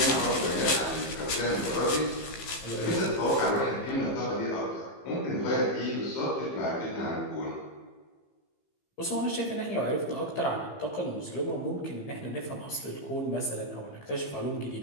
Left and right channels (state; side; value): late; right; 15 ms